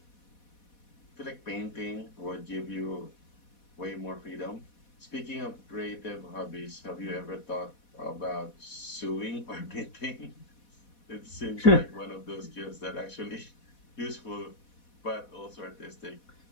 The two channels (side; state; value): right; late; 4.1 ms